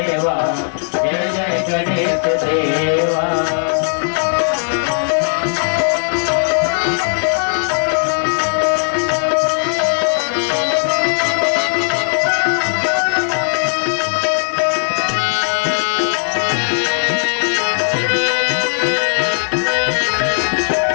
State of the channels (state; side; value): silent; right; digital silence